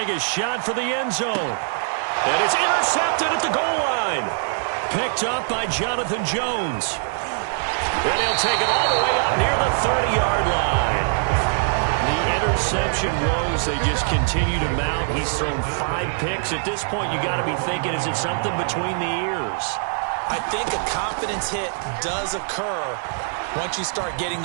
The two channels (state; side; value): silent; left; 59 dB below the other